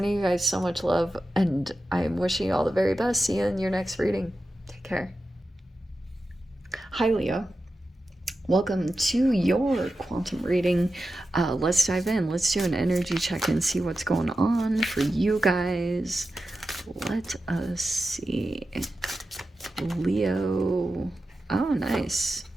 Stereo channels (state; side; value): normal; both; correlation 0.92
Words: you guys so much love, and I'm wishing you all the very best. See you in your next reading. Take care. Hi, Leo. Welcome to your quantum reading. Let's dive in. Let's do an energy check and see what's going on for you guys. Let us see. Leo. Oh, nice.